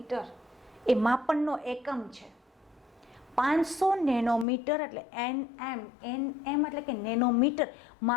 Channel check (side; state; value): right; drops out; at 4.5 s